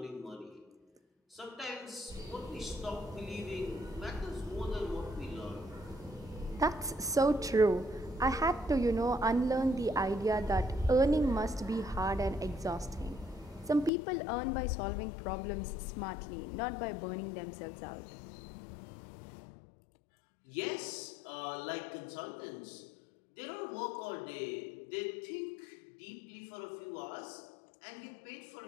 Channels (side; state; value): right; drops out; at 13.9 s